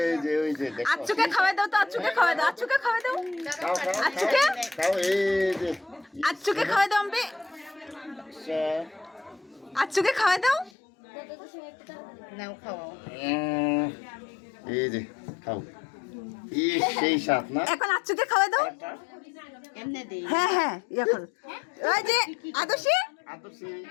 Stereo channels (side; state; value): right; drops out; at 10.7 s